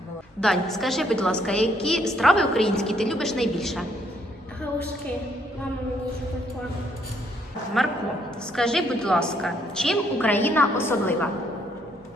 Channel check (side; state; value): both; normal; correlation 0.70